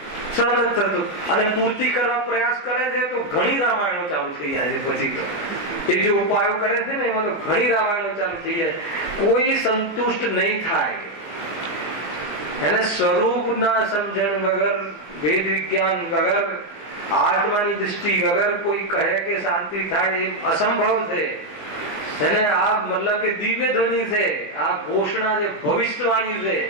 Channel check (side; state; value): right; late; 19 ms